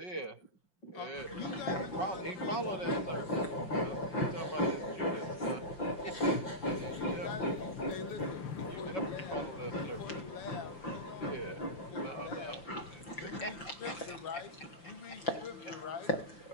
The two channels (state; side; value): late; right; 5.7 ms